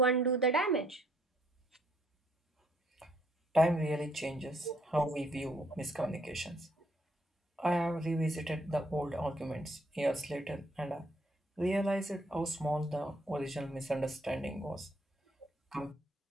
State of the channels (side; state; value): both; normal; correlation 0.68